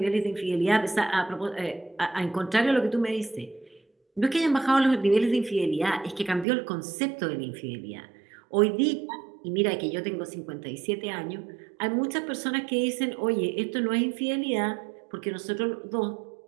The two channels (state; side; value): drops out; left; at 6.5 s